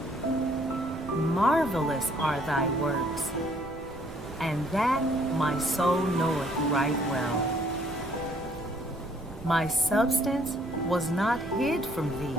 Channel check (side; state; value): right; noise; rumble, 16 dB below the sound